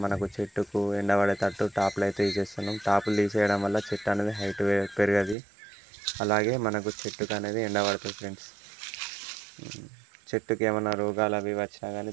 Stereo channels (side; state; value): left; drops out; at 5.4 s